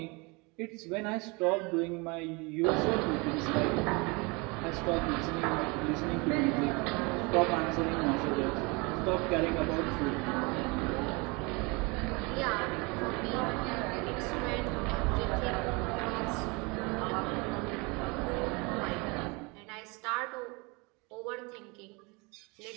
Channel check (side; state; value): left; quieter; 28.1 dB